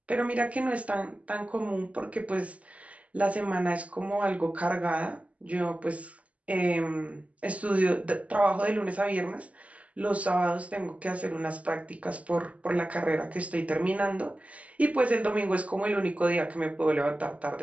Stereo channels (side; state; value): left; late; 0.068 ms